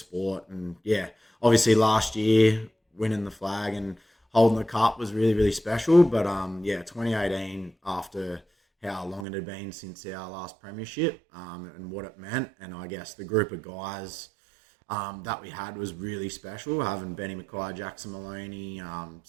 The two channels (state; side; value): drops out; left; at 9.2 s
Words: And yeah, obviously last year winning the flag and holding the cup was really, really special. But yeah, 2018, after how long it had been since our last premiership, and what it meant, and I guess the group of guys that we had was really special. Having Benny Mackay, Jackson Maloney,